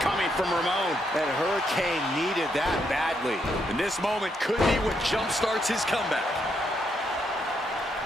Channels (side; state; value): both; normal; correlation 0.77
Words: coming from Ramon. And Hurricane needed that badly. And this moment could be what jumpstarts his comeback.